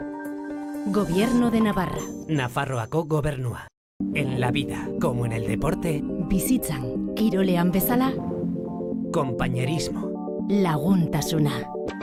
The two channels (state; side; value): identical; both; correlation 1.00